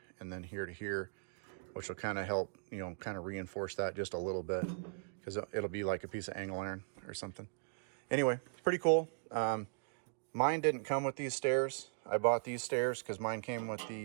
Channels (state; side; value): silent; left; digital silence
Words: and then here to here, which will kind of help, kind of reinforce that just a little bit, because it'll be like a piece of angle iron or something. Anyway, pretty cool. Mine didn't come with these stairs. I bought these stairs because mine came with